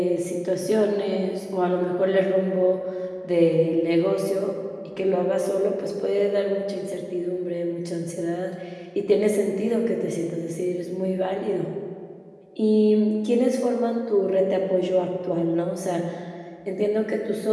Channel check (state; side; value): identical; both; correlation 1.00